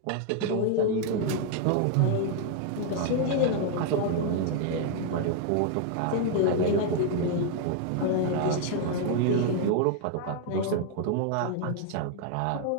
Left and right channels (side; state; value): both; different; correlation 0.00